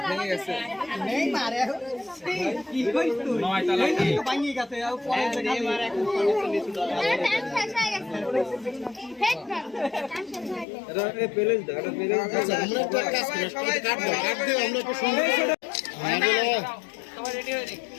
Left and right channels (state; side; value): drops out; right; at 10.7 s